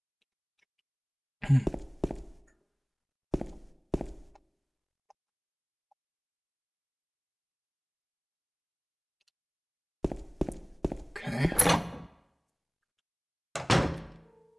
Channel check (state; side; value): identical; both; correlation 1.00